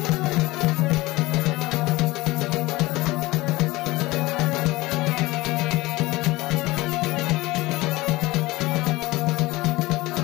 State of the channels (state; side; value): quieter; right; 20.0 dB